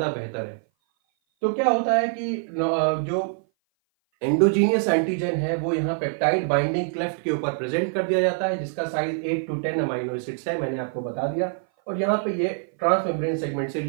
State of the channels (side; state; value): left; silent; 58 dB below the other